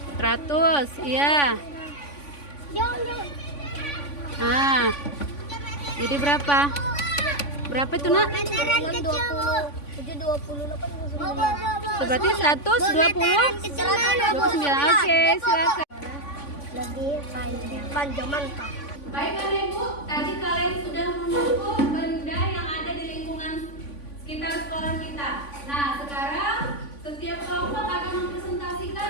Iya. Jangan. Ah. Jadi berapa? Berapa itu, Nak? Meteran kecil, Bu. 728. Berarti 129. Oke, silakan. Lebih panjang mantap. Baik Bapak Ibu, tadi kalian sudah mengukur benda yang ada di lingkungan sekitar sekolah kita. Nah, sekarang setiap kelompok akan mempresentasikan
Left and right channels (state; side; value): late; right; 3.5 ms